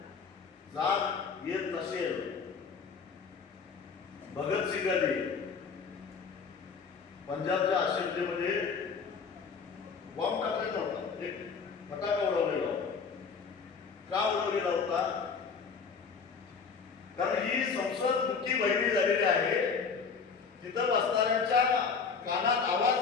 जाग येत नसेल, भगतसिंगांनी पंजाबच्या असेंब्लीमध्ये बॉम्ब टाकलेला होता, एक फटाका उडवलेला होता. का उडवलेला होता? कारण ही संसद मुक्ती बहिणी झालेली आहे. तिथं बसणाऱ्यांच्या कानात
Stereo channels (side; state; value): right; quieter; 5.6 dB